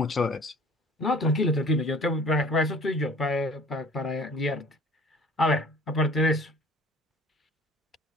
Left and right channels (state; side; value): normal; both; correlation 0.48